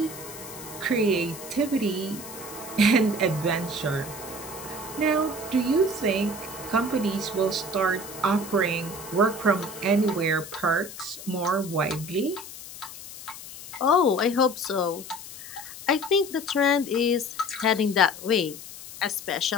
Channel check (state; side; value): noise; left; hiss, 13 dB below the sound